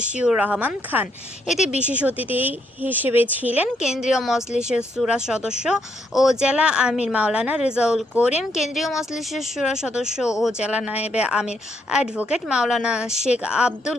রহমান খান। এতে বিশেষ অতিথি হিসেবে ছিলেন কেন্দ্রীয় মজলিসে শুরা সদস্য ও জেলা আমির মাওলানা রেজাউল করিম, কেন্দ্রীয় মজলিসে শুরা সদস্য ও জেলা নায়েবে আমির অ্যাডভোকেট মাওলানা শেখ আব্দুল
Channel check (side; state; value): both; normal; correlation 0.75